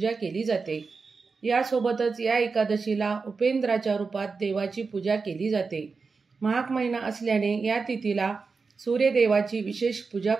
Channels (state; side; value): quieter; left; 4.6 dB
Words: केली जाते। यासोबतच या एकादशीला उपेंद्राच्या रूपात देवाची पूजा केली जाते। माघ महिना असल्याने या तिथीला सूर्यदेवाची विशेष पूजा